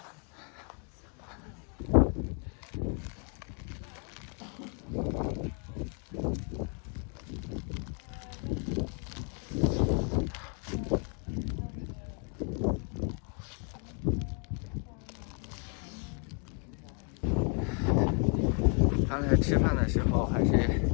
刚才吃饭的时候还是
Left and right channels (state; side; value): quieter; right; 38.9 dB